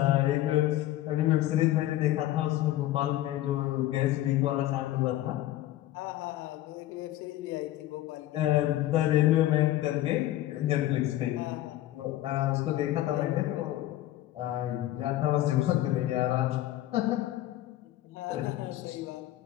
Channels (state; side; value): quieter; right; 14.6 dB